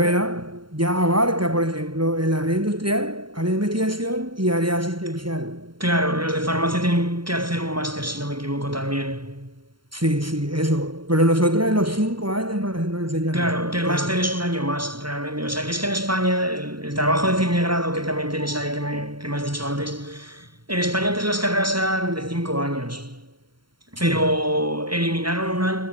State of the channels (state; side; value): late; left; 0.73 ms